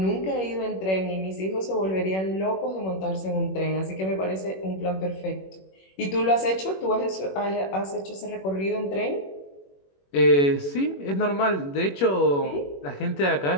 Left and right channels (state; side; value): late; right; 21 ms